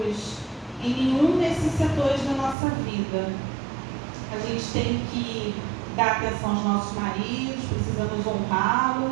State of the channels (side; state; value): left; drops out; at 2.6 s